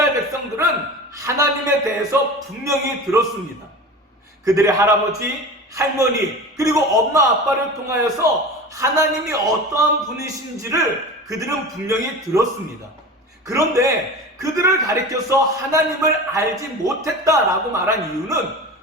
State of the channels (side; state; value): both; normal; correlation 0.33